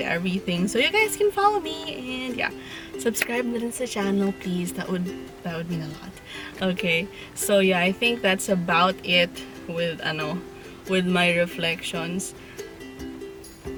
everything, so you guys can follow me, and yeah, subscribe na rin sa channel, please. That would mean a lot. Okay, so yeah, I think that's about it with my reflections.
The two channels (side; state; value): both; identical; correlation 1.00